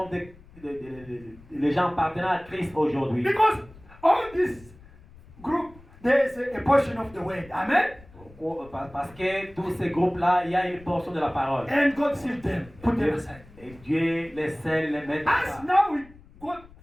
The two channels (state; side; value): noise; left; rumble, 23 dB below the sound